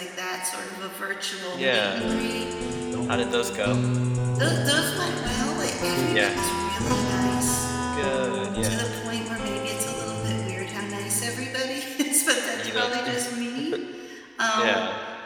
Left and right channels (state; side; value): identical; both; correlation 1.00